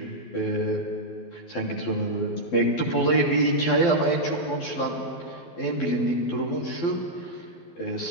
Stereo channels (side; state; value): right; late; 12 ms